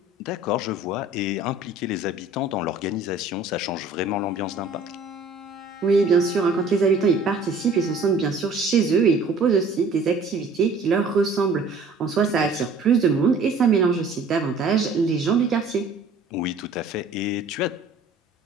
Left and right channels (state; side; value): quieter; left; 3.3 dB